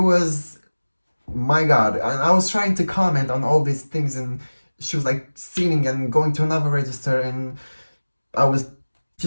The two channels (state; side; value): inverted; both; correlation -1.00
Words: my god. And I was trying to comment on all these things, and she was like singing and going to another register, and I was